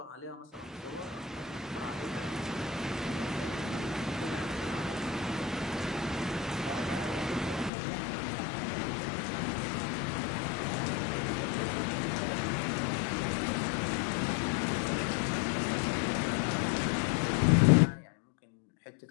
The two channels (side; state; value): right; drops out; at 7.7 s